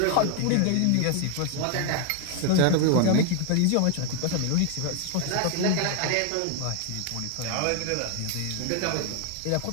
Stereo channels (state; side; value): different; both; correlation 0.00